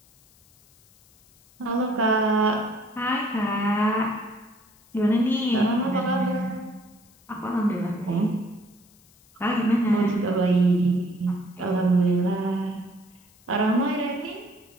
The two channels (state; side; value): noise; left; hiss, 29 dB below the sound